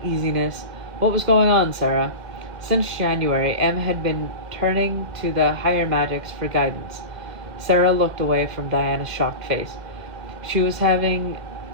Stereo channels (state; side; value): late; left; 2.1 ms